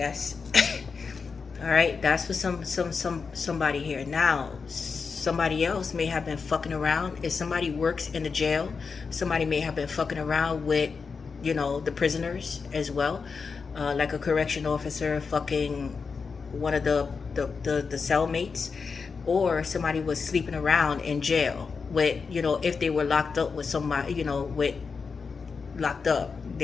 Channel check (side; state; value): right; quieter; 5.2 dB